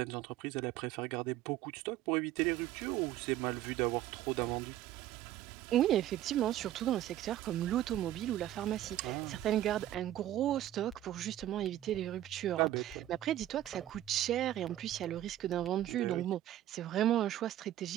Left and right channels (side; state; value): left; quieter; 13.2 dB